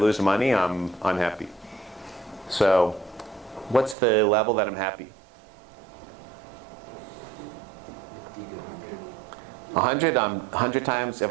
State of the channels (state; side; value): drops out; left; at 4.0 s